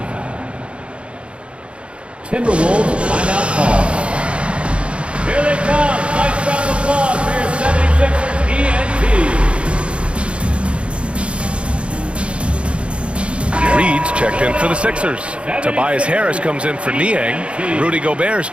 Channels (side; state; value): left; late; 0.059 ms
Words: Timberwolves timeout call. Here they come. Nice round of applause for your 76ers ENT. Reed's checked in for the Sixers. Tobias Harris comes in for Niang. Rudy Gobert's